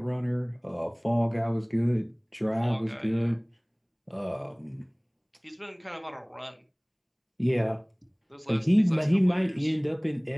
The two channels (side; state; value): both; identical; correlation 1.00